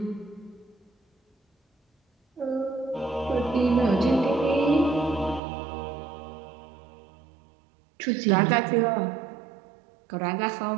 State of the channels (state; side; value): drops out; left; at 5.4 s